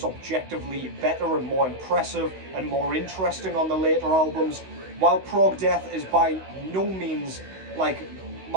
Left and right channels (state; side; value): late; left; 16 ms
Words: objectively better and more impressive and more interesting on the later albums. While prog death is by no means like